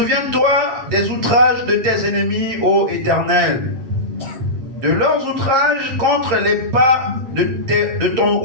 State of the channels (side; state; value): left; late; 7.4 ms